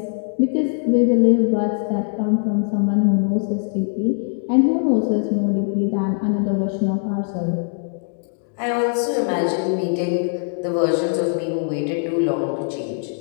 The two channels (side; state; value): right; silent; digital silence